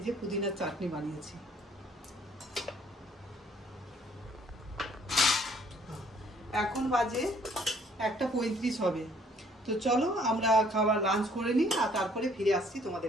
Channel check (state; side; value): normal; both; correlation 0.61